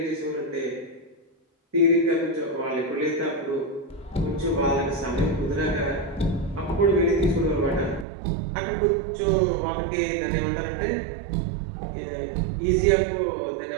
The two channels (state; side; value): drops out; left; at 8.1 s